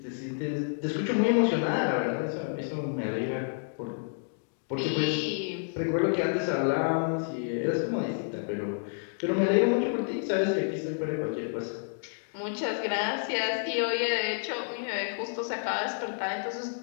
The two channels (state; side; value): silent; right; digital silence